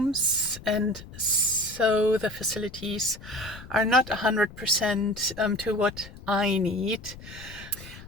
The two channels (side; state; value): left; noise; rumble, 16 dB below the sound